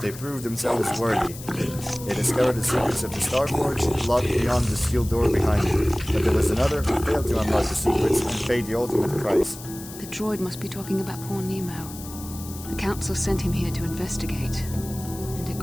proved themselves worthy. They discovered the secrets of the Starforge, locked beyond the sealed door behind you. But there was another who failed to unlock the secrets and paid the ultimate price. The droid must be talking about poor Nemo. The Council sent him here to investigate, and it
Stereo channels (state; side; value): noise; left; hiss, 14 dB below the sound